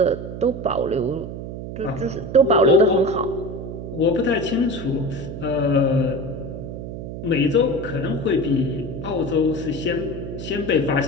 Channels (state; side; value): noise; right; hum, 8 dB below the sound